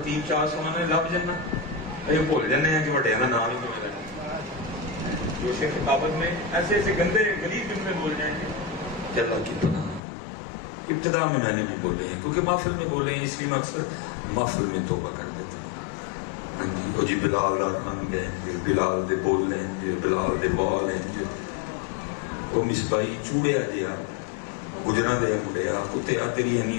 چار سمانے لب جانا یہ بھول جانے ہیں کہ بڑے کا نام ہی کیوں لینا، جو شیخ خطابت میں ایسے ایسے گندے غلیظ جملے بول جائیں گے کہ اللہ کی پناہ۔ ابتدا میں نے بھی بولے ہیں کیونکہ محفل میں بولے ہیں، اس لیے میں اکثر محفل میں توبہ کر دیتا ہوں۔ وہ جی بلال رن گئے، بلال دے بول لیں، بلال دے بال ہیں، وہ مصباحی چوڑیا جہا گجرا دیا مڑیا کتیا تیری اینی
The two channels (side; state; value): right; drops out; at 10.0 s